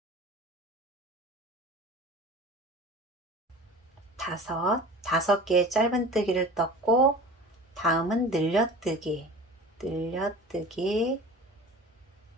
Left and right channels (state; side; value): normal; both; correlation 0.38